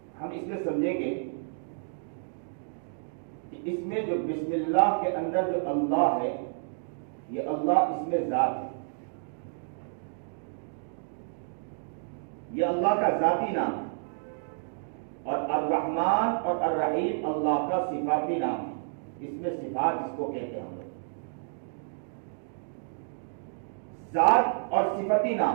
ہم اس میں سمجھیں گے کہ اس میں جو بسم اللہ کے اندر جو اللہ ہے، یہ اللہ اس میں ذات ہے، یہ اللہ کا ذاتی نام ہے، اور الرحمن اور الرحیم اللہ کا صفاتی نام ہے۔ اس میں صفات اس کو کہتے ہیں ہم لوگ، ذات اور صفتی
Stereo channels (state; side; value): silent; left; digital silence